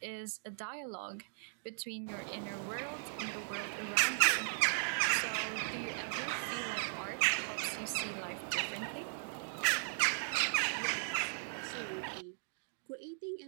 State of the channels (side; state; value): left; silent; digital silence